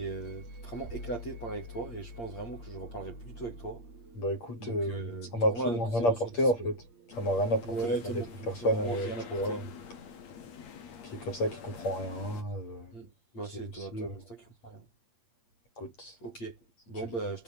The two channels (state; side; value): late; right; 8.6 ms